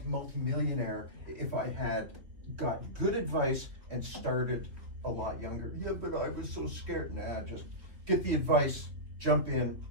if I had got good advice and started a lot younger. Yeah, but I was so scared. Nah, just get the advice, jump in,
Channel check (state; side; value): late; left; 3.2 ms